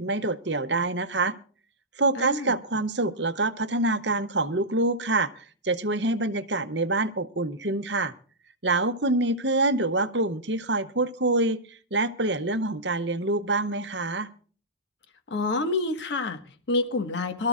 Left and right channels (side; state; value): both; normal; correlation -0.11